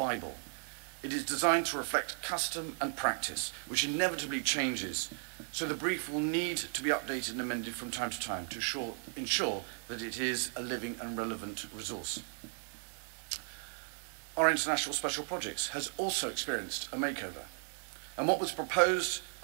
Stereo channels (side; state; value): left; silent; 54 dB below the other